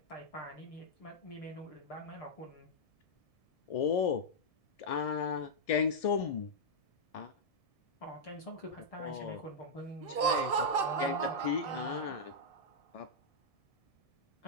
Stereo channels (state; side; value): late; right; 1.7 ms